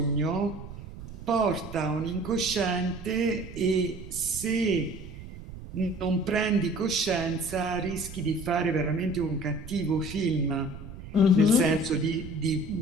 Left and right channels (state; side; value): noise; right; rumble, 13 dB below the sound